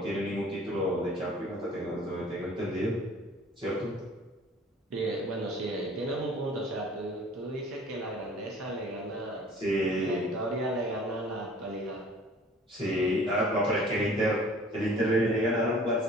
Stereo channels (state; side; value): normal; both; correlation 0.50